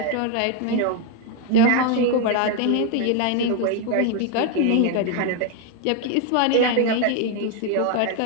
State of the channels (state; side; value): different; both; correlation 0.00